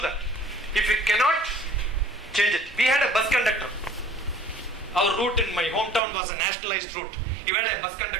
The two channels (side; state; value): left; drops out; at 6.0 s